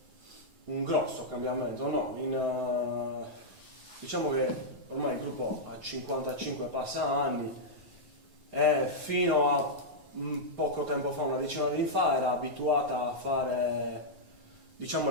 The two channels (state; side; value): late; left; 9.3 ms